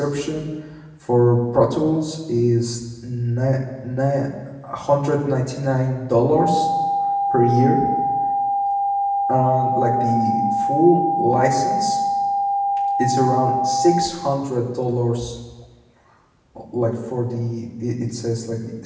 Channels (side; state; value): both; identical; correlation 1.00